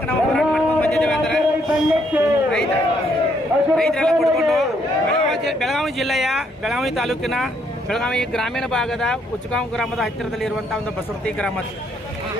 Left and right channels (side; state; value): both; normal; correlation 0.71